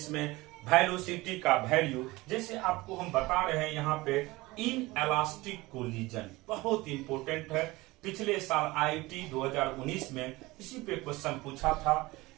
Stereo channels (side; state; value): left; quieter; 20.9 dB